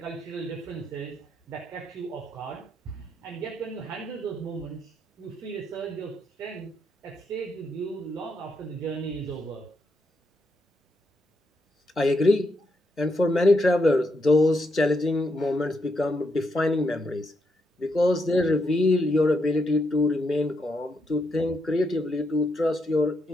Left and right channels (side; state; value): both; normal; correlation 0.80